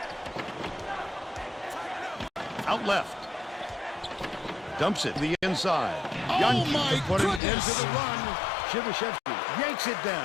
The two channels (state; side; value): drops out; right; at 7.4 s